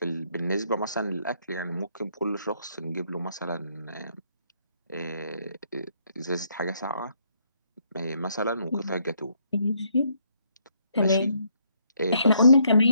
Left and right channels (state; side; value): inverted; both; correlation -0.72